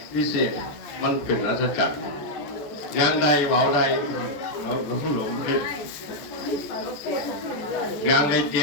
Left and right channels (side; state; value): right; late; 14 ms